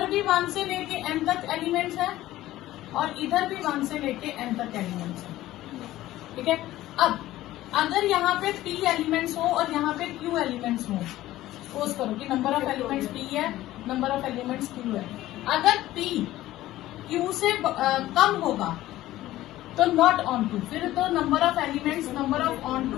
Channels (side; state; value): right; quieter; 15.4 dB